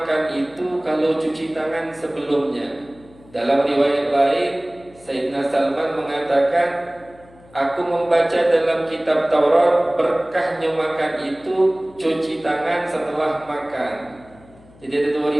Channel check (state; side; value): noise; left; hum, 25 dB below the sound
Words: itu kalau cuci tangan sebelumnya. Dalam riwayat lain, Sayyidina Salman mengatakan, aku membaca dalam kitab Taurat, berkahnya makan itu cuci tangan setelah makan. Jadi ada dua